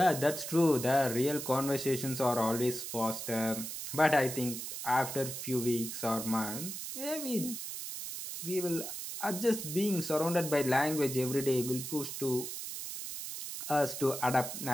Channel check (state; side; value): noise; right; hiss, 7 dB below the sound